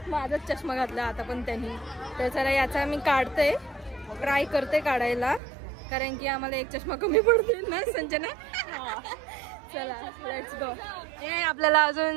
माझाच चष्मा घातला आता पण त्यांनी. तर चला याचा मी काढते, ट्राय करते काढायला, कारण की आम्हाला एक चष्मा कमी पडते ना संजना. चला लेट्स गो. आपल्याला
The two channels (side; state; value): left; drops out; at 5.4 s